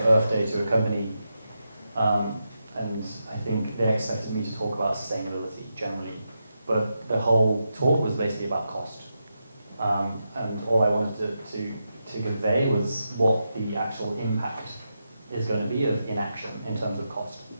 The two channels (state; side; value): inverted; both; correlation -0.87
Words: Day to a company, and I think they expected me to talk about sustainability generally, but the whole talk was basically about cost. And all I wanted to convey was what the actual impact is going to be of inaction in terms of cost.